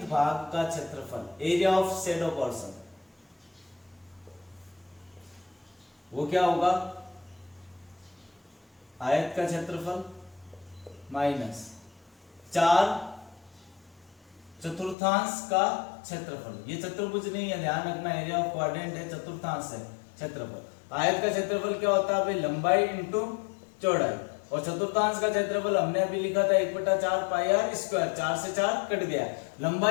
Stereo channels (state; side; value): drops out; right; at 15.0 s